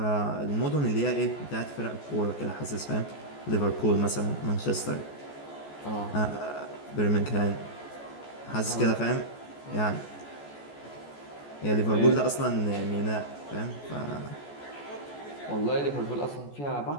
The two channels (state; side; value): late; right; 14 ms